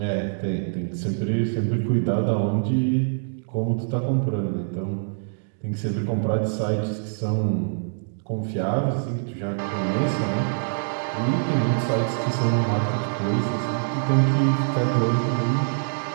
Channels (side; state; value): left; silent; digital silence